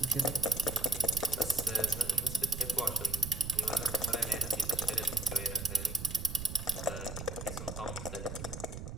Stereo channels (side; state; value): right; noise; rumble, 8 dB below the sound